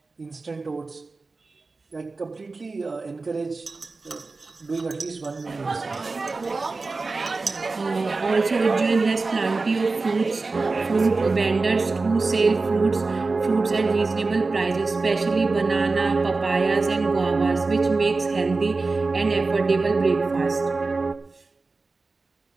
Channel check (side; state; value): left; quieter; 3.8 dB